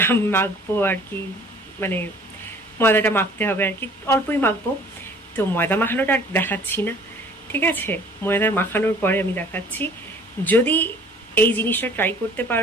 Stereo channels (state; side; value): normal; both; correlation 0.52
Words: মাখবো আর কি, মানে ময়দাটা মাখতে হবে আর কি, অল্পই মাখবো। তো ময়দা মাখানোটা আর দেখাচ্ছি না, ঠিক আছে? ময়দা মাখানোর পরে আমি দেখাচ্ছি। যদি এই জিনিসটা ট্রাই করতে